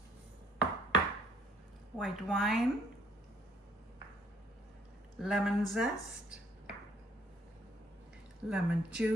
white wine, lemon zest, lemon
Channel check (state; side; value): normal; both; correlation 0.64